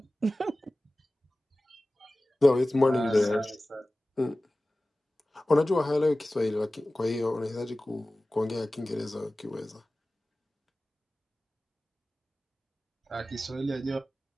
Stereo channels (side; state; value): both; normal; correlation 0.97